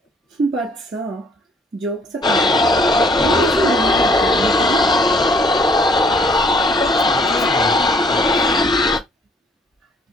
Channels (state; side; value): normal; both; correlation 0.62